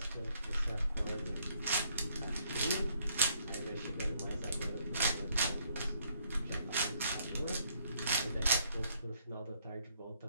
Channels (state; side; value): inverted; both; correlation -0.68